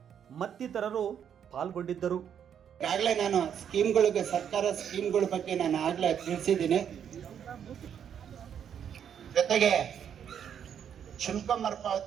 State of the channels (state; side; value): quieter; left; 8.6 dB